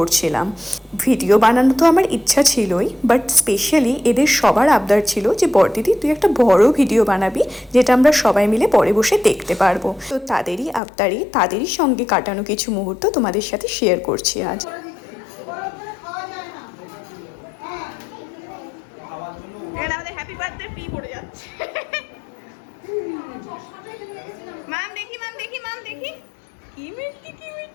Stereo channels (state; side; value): drops out; right; at 10.8 s